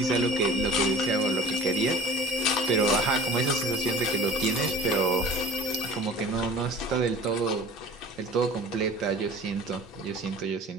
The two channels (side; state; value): both; normal; correlation 0.42